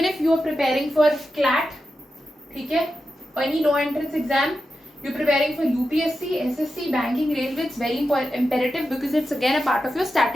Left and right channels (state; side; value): normal; both; correlation 0.90